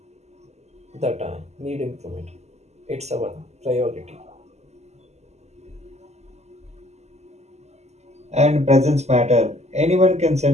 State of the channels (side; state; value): left; late; 0.32 ms